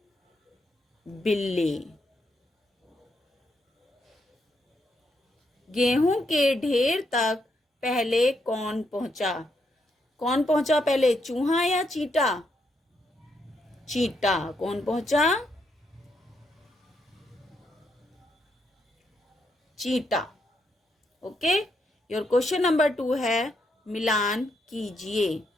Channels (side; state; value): both; normal; correlation 0.78